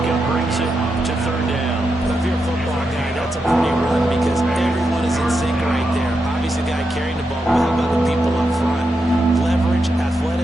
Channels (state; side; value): normal; both; correlation 0.86